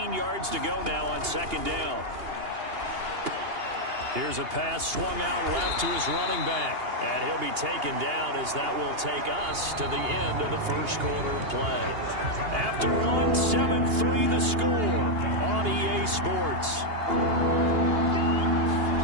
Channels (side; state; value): left; late; 2.8 ms